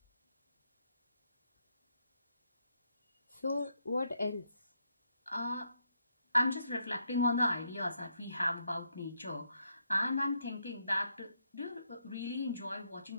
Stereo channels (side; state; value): both; inverted; correlation -0.77